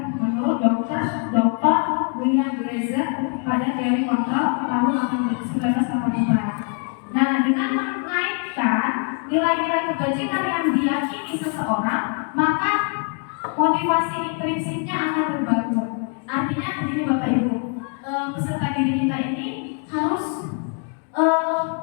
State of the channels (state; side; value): quieter; right; 39.7 dB